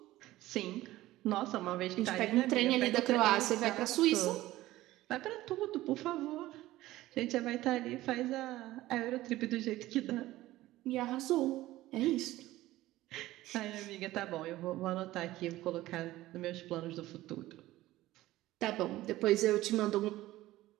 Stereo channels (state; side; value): quieter; left; 16.4 dB